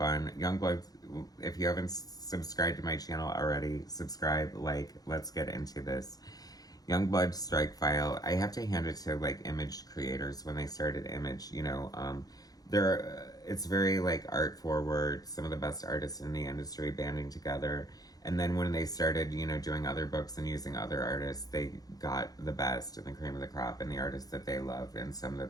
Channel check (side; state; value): right; late; 0.18 ms